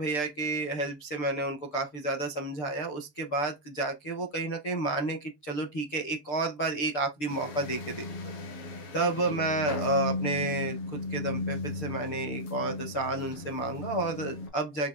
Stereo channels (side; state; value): right; late; 6.7 ms